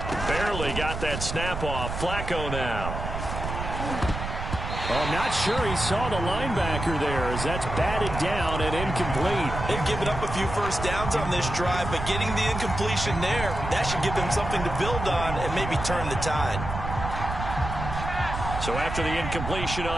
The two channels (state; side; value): noise; right; rumble, 6 dB below the sound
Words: Barely got that snap off. Flacco now. Well, I'm not sure he saw the linebacker there, as that's batted down and incomplete. They've given up a few first downs on this drive, but getting the incompletion there, that should give them something to build on and maybe turn the tide. So after the incompletion